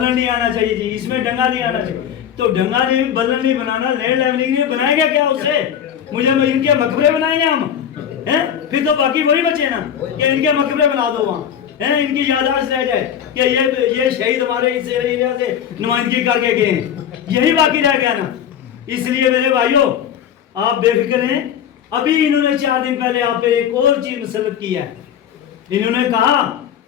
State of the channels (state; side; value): quieter; right; 9.0 dB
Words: नहीं आना चाहिए जी, इसमें डंगा नहीं आना चाहिए। तो डंगा नहीं, बल्लन नहीं बनाना, लैंड लेवलिंग नहीं बनाएंगे क्या उससे? मुझे इनके मकबरे बनाएंगे हम हैं? फिर तो बाकी वही बचे ना कि इनके मकबरे बना दो वहाँ हैं, इनकी याददाश्त रह जाए कि ये शहीद हमारे इस एरिया से नुमाइंदगी करके गए हैं, यही बाकी रह गया ना। इसलिए मेरे भाइयों, आप बेफिक्र हैं। अभी इन्होंने 4 दिन पहले आप पे एक और चीज मुसल्लत की है। इन्होंने कहा